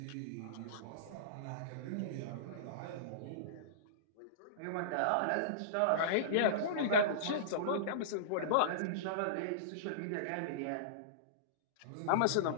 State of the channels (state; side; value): different; both; correlation -0.04